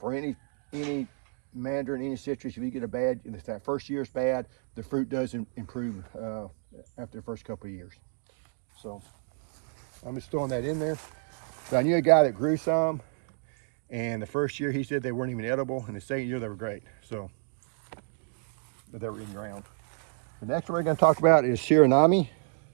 any mandarin, any citrus, if you get if that first year is bad, the fruit does improve after the first couple of years. So I'm just throwing that in there. So I knew a guy that grew some, and the first year he said they weren't even edible, and the second year they were great. So, but they were in ground. The next one we're going to talk about is Shiranami.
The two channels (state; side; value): silent; left; 58 dB below the other